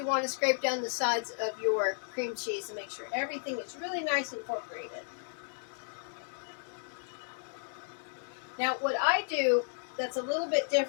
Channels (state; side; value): silent; right; digital silence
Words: want to scrape down the sides of your cream cheese and make sure everything is really nice and incorporated. Now, what I do that's a little bit